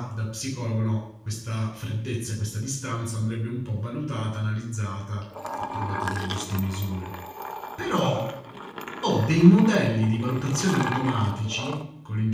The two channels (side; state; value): both; identical; correlation 1.00